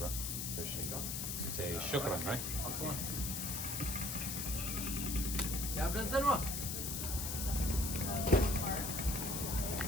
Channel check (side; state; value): left; noise; hiss, 2 dB below the sound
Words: Appreciate it. Say shukran, right? عفوا. يا ابن الزنوة.